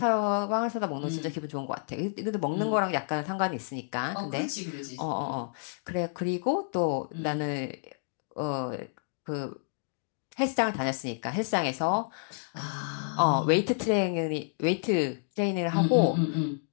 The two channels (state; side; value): silent; right; digital silence